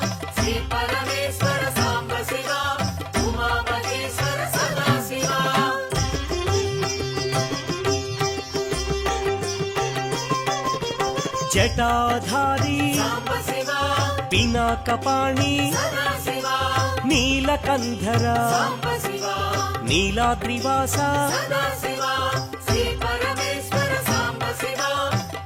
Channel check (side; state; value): both; identical; correlation 1.00